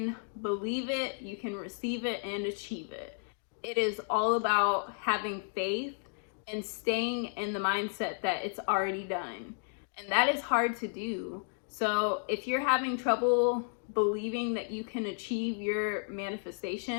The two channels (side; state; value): right; silent; 56 dB below the other